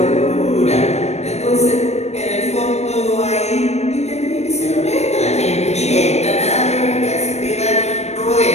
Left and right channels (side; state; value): right; late; 0.32 ms